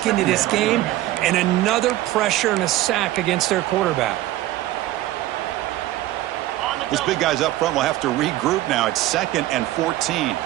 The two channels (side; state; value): left; quieter; 15.5 dB